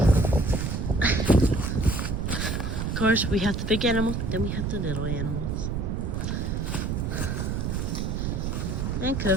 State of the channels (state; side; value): noise; right; rumble, 1 dB below the sound